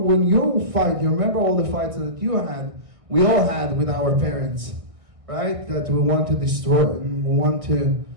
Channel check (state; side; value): late; left; 1.6 ms